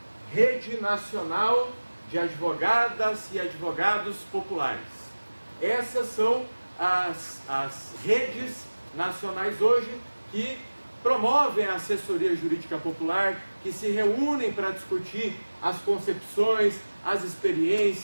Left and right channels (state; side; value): inverted; both; correlation -1.00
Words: Rede Nacional de Advogadas e Advogados Populares. Essas são as redes nacionais hoje que promovem a assessoria jurídica popular, que se reúnem para discutir as concepções, as